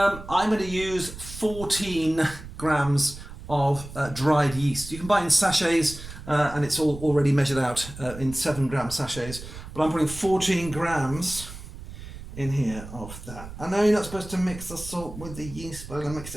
going to use 14 grams of dried yeast. You can buy it in sachets and it's all already measured out in 7-gram sachets. But I'm putting 14 grams in here of that. I know you're not supposed to mix the salt with the yeast, but I'm going to mix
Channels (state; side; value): noise; right; rumble, 13 dB below the sound